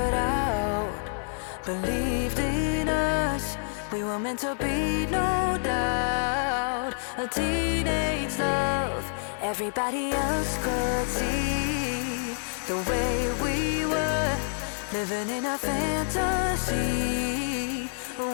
out, believed in us, we were meant to be, no doubt. A teenage love, everybody else could see the way we were, living in a fantasy.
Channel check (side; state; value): right; silent; digital silence